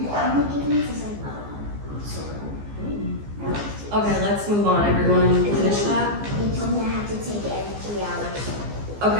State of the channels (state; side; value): late; left; 15 ms